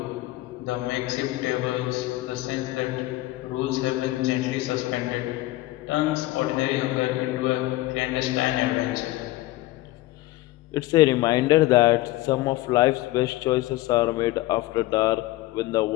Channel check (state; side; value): quieter; right; 17.9 dB